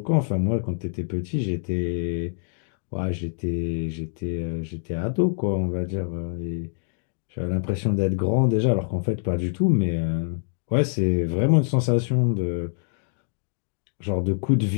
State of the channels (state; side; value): silent; right; digital silence